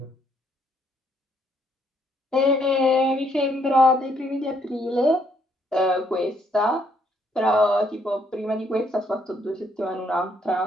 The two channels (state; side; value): normal; both; correlation 0.70